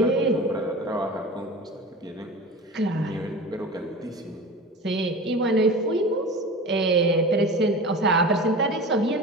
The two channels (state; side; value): normal; both; correlation 0.33